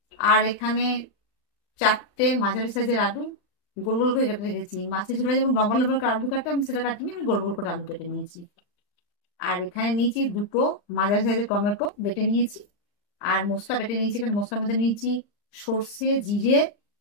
আর এখানে 4টে মাঝারি সাইজের আলু গোল গোল করে কেটে রেখেছি। মাছের ঝোলে যেমন লম্বা লম্বা করে আলু কাটে, আমি সেটা কাটিনি, আমি গোল গোল করে আলু কেটে নিয়েছি। আর এখানে নিয়েছি 2টো মাঝারি সাইজের টমেটো বেটে নিয়েছি। আর মশলা বেটে নিয়েছি, এখানে মশলার মধ্যে নিয়েছি সর্ষে, জিরে,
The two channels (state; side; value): late; right; 39 ms